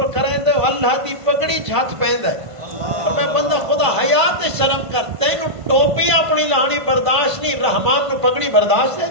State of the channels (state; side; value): late; left; 1.5 ms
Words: کریں دے اللہ دی پگڑی جھات پہن ہے اور میں بندہ خدا حیات شرم کر تینو ٹوپی اپنی لانی برداشت نہیں رحمان نو پگڑی برداشت ہے